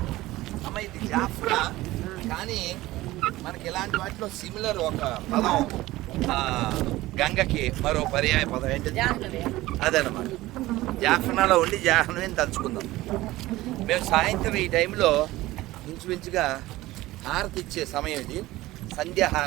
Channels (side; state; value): left; quieter; 17.7 dB